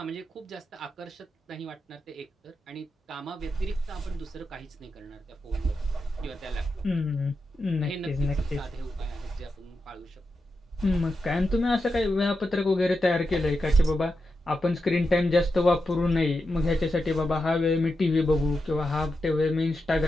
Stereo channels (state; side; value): normal; both; correlation 0.88